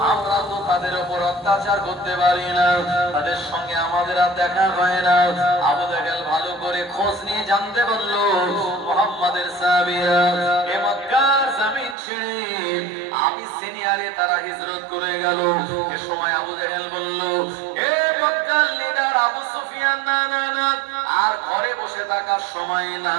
আমরা তো তাদের উপর অত্যাচার করতে পারি না, তাদের সঙ্গে আমাদের আর দেখা হয় না। আবু জাহেল ভালো করে খোঁজ নিয়ে জানতে পারলো মুহাম্মাদের সাহাবীরা এ মক্কার জমিন ছেড়ে আবিসিনিয়ারে তারা হিজরত করে গেল। এ সময় আবু জাহেল বলল, এ মক্কার লিডার আবু সুফিয়ান, না না না, আর ঘরে বসে থাকার সময়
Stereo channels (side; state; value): left; drops out; at 12.0 s